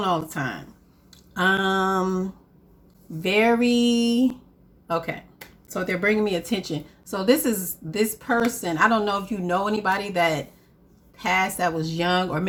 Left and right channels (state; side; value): identical; both; correlation 1.00